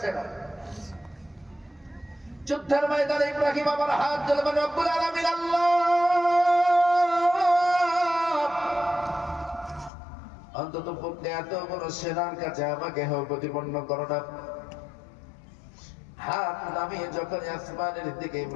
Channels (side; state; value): right; drops out; at 9.9 s